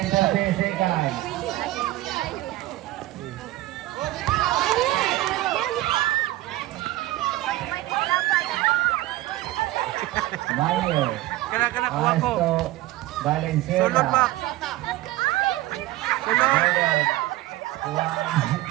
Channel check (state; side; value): quieter; left; 16.9 dB